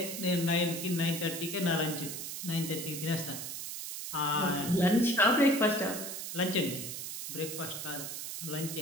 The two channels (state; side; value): noise; right; hiss, 6 dB below the sound